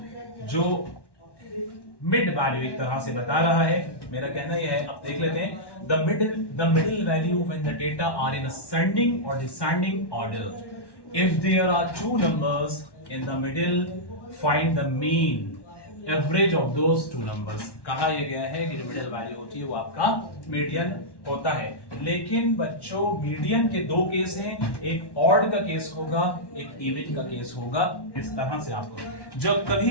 जो मिड वैल्यू एक तरह से बता रहा है। मेरा कहना यह है, अब देख लेते हैं। The middle value when the data are in ascending और descending order. If there are 2 numbers in the middle, find the mean average of those 2 numbers। कहा यह गया है कि जो मिडिल वैल्यू होती है वो आपका मीडियन होता है। लेकिन बच्चों मीडियन के दो केस हैं, एक ऑड का केस होगा, एक इवन का केस होगा। इस तरह से आपको जब कभी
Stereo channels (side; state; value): right; late; 1.1 ms